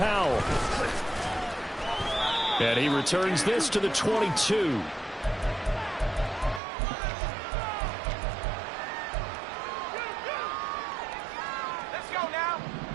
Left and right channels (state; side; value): drops out; left; at 6.6 s